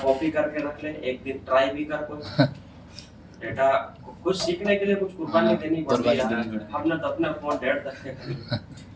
करके रख ले, एक दिन ट्राई भी कर कोई। डेटा कुछ सीखने के लिए कुछ कुर्बानी देनी पड़ती है। हमने तो अपना फोन 1.5 तक के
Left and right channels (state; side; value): identical; both; correlation 1.00